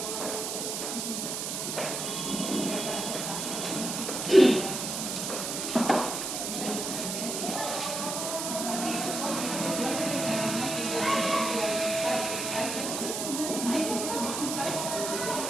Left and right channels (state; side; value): noise; right; hiss, 3 dB below the sound